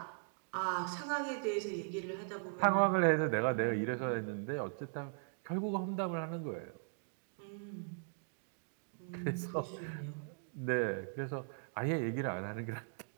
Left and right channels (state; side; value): silent; left; digital silence